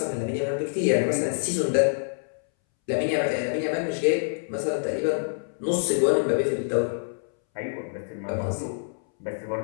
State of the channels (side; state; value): right; silent; 61 dB below the other